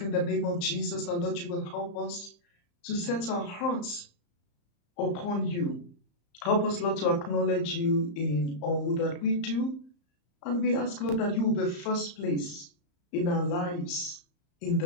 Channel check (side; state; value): right; late; 34 ms